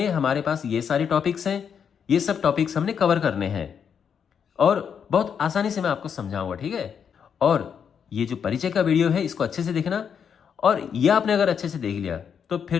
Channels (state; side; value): quieter; right; 7.4 dB